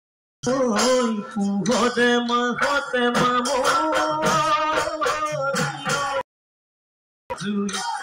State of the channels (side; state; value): both; identical; correlation 1.00